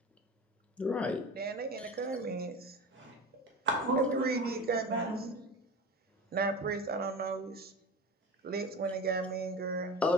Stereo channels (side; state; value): both; normal; correlation 0.30